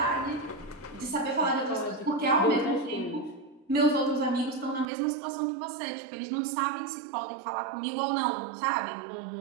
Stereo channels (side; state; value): left; drops out; at 4.9 s